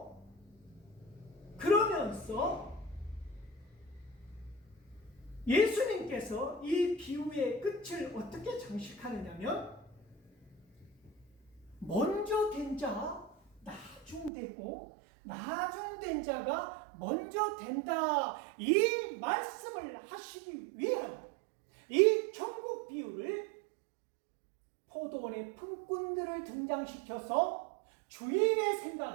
그러면서 예수님께서 이 비유의 끝을 어떻게 장식하느냐면, 먼저 된 자 나중되고 나중된 자가 먼저 된다, 이 말씀을 하시기 위한 이 천국 비유를 포도원의 품꾼들을 등장시켜서 주인의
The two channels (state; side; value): drops out; left; at 14.3 s